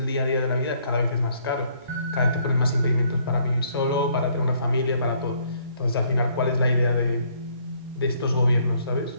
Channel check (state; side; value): inverted; both; correlation -0.65